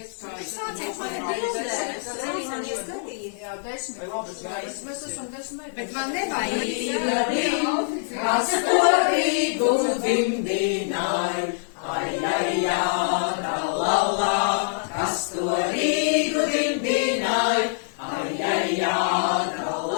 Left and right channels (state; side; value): silent; right; digital silence